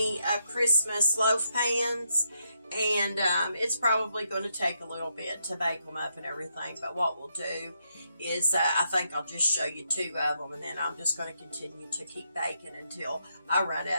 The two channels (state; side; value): inverted; both; correlation -0.79